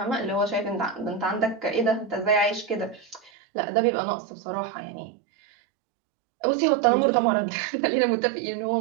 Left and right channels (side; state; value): left; drops out; at 3.3 s